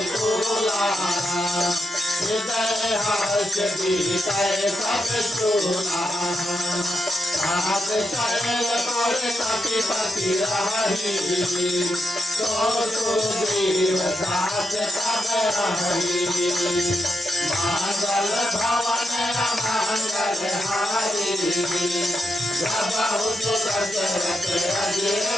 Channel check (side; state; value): both; normal; correlation 0.85